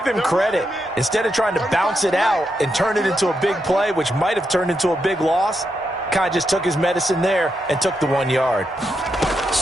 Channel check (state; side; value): normal; both; correlation 0.83